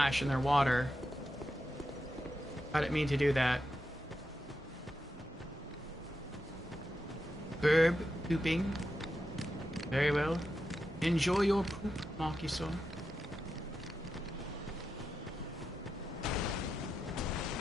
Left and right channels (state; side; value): normal; both; correlation 0.88